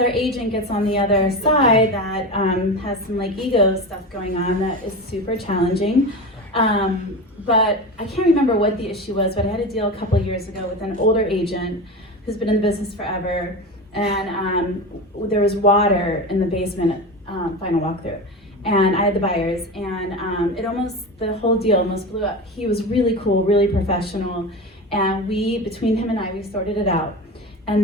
agent gets on the other side that has some like ego stuff going on, that is super challenging. But I can't remember what the issue was, but I had a deal a couple of years ago with an older agent who's been in the business forever. And there was water in the basement, final walkthrough. And I had the buyers, and the whole deal almost blew up. He was really cool, really professional. And between him and I, we sorted it out.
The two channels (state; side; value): normal; both; correlation 0.25